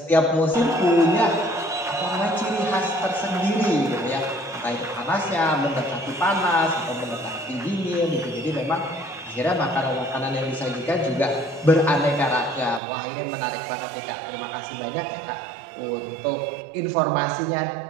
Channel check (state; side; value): drops out; left; at 12.8 s